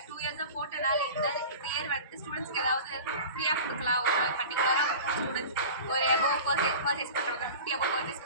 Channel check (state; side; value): inverted; both; correlation -0.36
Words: 2 இயர்ஸாக போட்டனால இந்த இயர் வந்துட்டு ஸ்டூடெண்ட்ஸ்க்கு ஏதாவது ஃப்ரீயாக கொடுக்கலாம். ஒரு பர்டிகுலராக ஸ்டூடெண்ட்ஸ் ஒரு எபோவ் பர்ச்சேஸ் பண்ணுறவங்க 50 எபோவ் பர்ச்சேஸ்